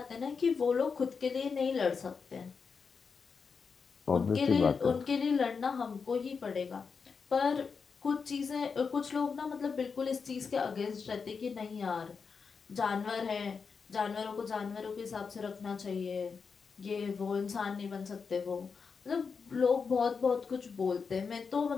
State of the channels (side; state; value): right; quieter; 5.5 dB